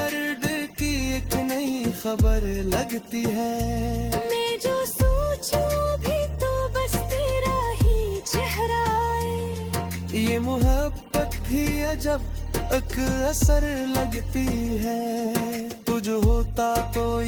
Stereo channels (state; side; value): identical; both; correlation 1.00